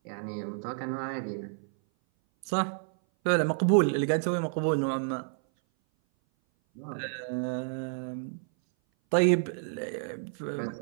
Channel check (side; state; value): left; silent; 57 dB below the other